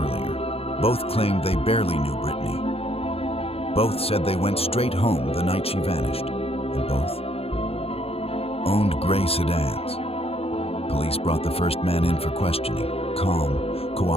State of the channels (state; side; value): late; right; 0.28 ms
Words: Both claimed they barely knew Brittany. Both said they went straight home the night she vanished, and both owned gray sedans. Police brought the first man in for questioning, calm,